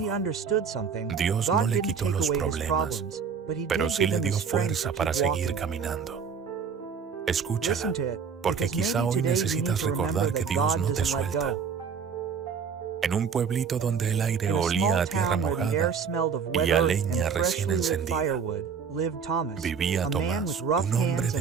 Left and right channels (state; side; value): quieter; left; 6.4 dB